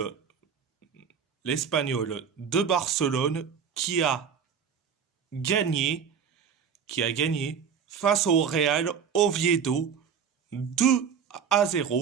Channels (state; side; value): quieter; left; 7.1 dB